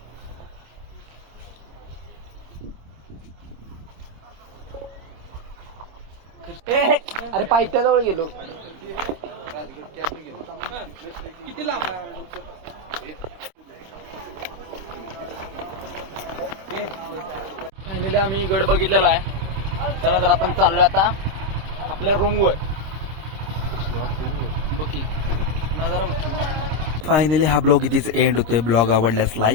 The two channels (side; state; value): left; late; 26 ms